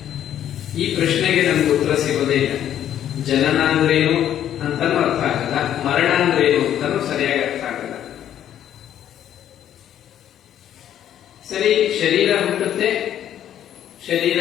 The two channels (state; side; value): quieter; right; 10.7 dB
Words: ಈ ಪ್ರಶ್ನೆಗೆ ನಮ್ಗೆ ಉತ್ತರ ಸಿಗೋದೇ ಇಲ್ಲ. ಜನನ ಅಂದ್ರೇನು ಅಂತಾನು ಅರ್ಥ ಆಗಲ್ಲ, ಮರಣ ಅಂದ್ರೇನು ಅಂತಾನು ಸರಿಯಾಗಿ ಅರ್ಥ ಆಗಲ್ಲ. ಸರಿ, ಶರೀರ ಹುಟ್ಟುತ್ತೆ, ಶರೀರ